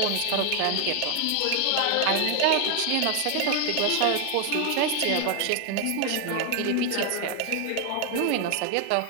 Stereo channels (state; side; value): different; both; correlation 0.01